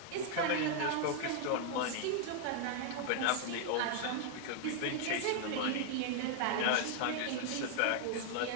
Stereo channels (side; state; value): both; different; correlation 0.00